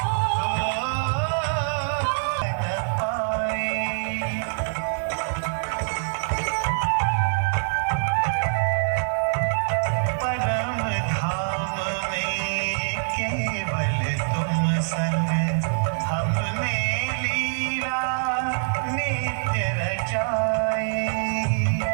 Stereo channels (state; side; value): silent; left; digital silence